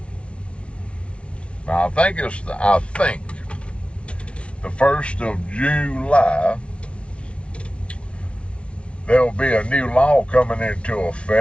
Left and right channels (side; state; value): right; late; 0.060 ms